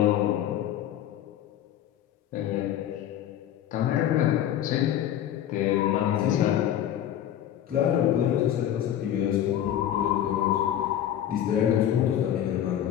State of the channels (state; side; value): quieter; right; 11.1 dB